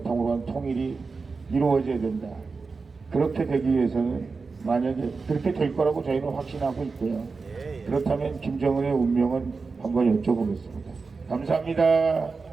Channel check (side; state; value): left; quieter; 4.4 dB